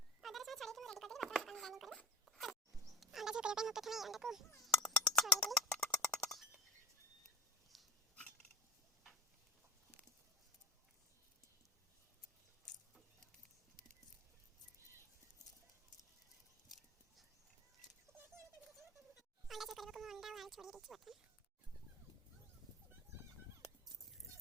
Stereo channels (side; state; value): both; normal; correlation 0.32